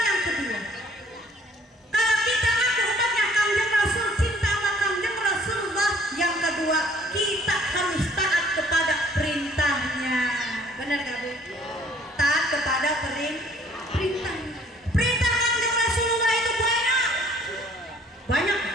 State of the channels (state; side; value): normal; both; correlation 0.58